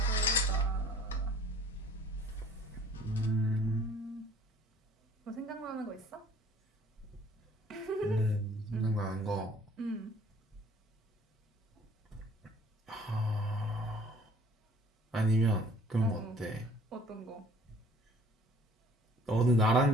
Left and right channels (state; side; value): normal; both; correlation 0.54